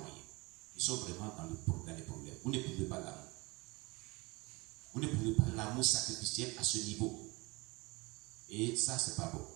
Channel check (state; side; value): quieter; left; 24.7 dB